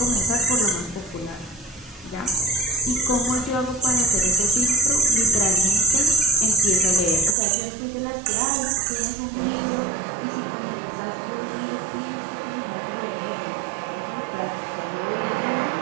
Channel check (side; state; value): left; drops out; at 7.4 s